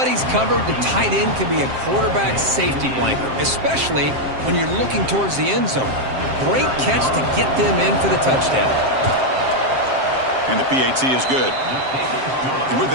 covered, the tight end can be a quarterback's safety blanket, especially when you're looking towards the end zone. Great catch to get them in for the touchdown. And the PAT is good. And with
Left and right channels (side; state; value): left; late; 7.6 ms